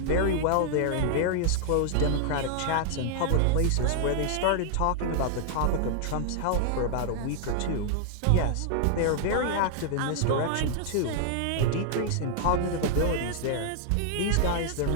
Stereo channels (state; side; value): different; both; correlation 0.00